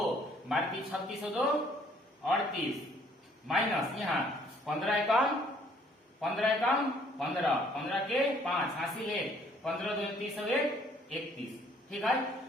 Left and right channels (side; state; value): both; normal; correlation 0.62